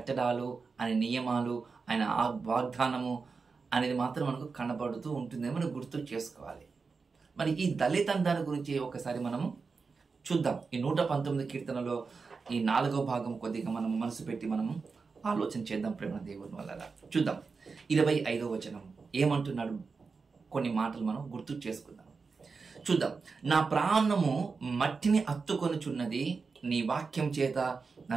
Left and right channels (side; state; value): left; quieter; 4.7 dB